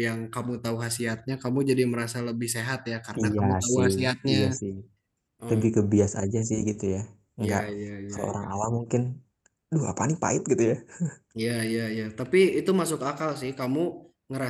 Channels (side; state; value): both; identical; correlation 1.00